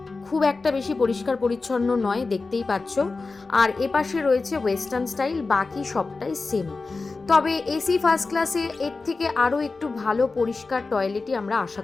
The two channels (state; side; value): quieter; right; 3.9 dB